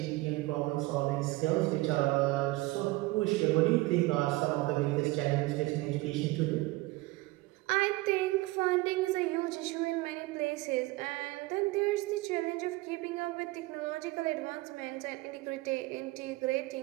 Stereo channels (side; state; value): left; quieter; 21.0 dB